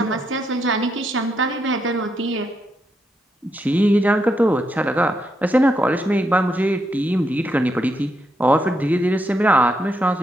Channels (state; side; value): normal; both; correlation 0.80